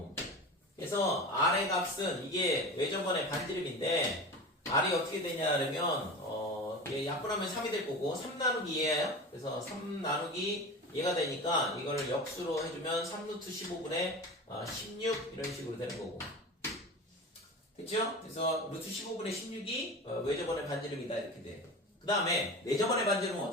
그래서 r의 값은 이게 외접원의 반지름인데 r이 어떻게 되냐 그러면 얘 약분하면 3이 될 거고 3 나누기 2예요. 그래서 3 나누기 얘가 되니까 이거를 역수로 해주면 3루트 15분의 16 이런 식으로 되는 거고. 됐죠? 그래서 루트 15분의 16이 외접원의 반지름이다 이렇게 돼. 그 다음에 내접원의 반지름은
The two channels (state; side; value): normal; both; correlation 0.31